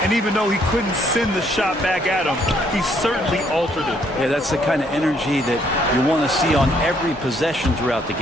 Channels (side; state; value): both; normal; correlation 0.68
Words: And even though he couldn't send the shot back at him, he certainly altered it. Yeah, that's the kind of energy that you want to see on every possession throughout the